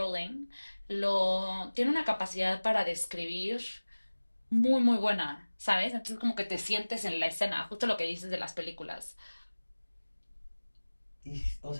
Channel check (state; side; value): inverted; both; correlation -1.00